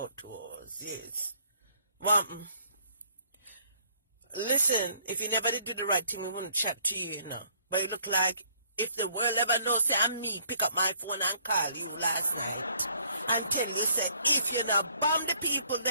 2 hours. Yes. Well, listen, if you never did do the right thing, we wouldn't chat to you, you know. But it look like if the world ever knows, say, I'm me, pick up my phone and call you last night. Until he said, if you not bomb the people,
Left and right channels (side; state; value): both; inverted; correlation -0.64